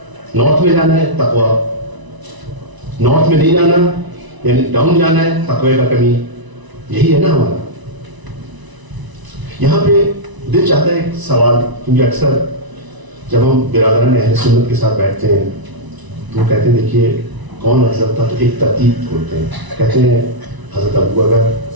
نارتھ میں جانا ہے تقویٰ, نارتھ میں نہیں جانا یعنی ڈاؤن جانا ہے تقوی کا کمی. یہی ہے نا ہمارا. یہاں پہ دل چاہتا ہے ایک سوال, کیونکہ اکثر جب ہم برادران اہل سنت کے ساتھ بیٹھتے ہیں تو کہتے ہیں دیکھیے کون افضل تھا, تو ایک ترتیب کھولتے ہیں, کہتے ہیں حضرت ابو بکر,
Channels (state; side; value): late; left; 1.0 ms